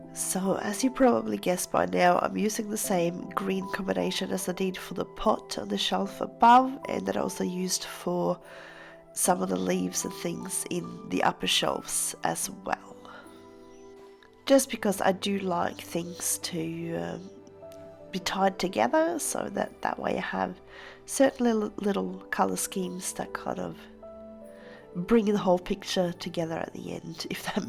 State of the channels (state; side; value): identical; both; correlation 1.00